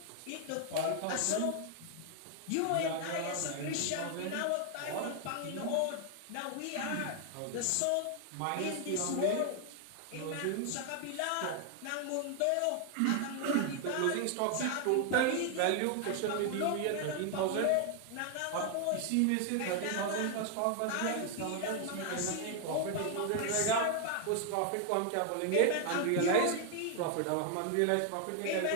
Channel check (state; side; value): different; both; correlation 0.00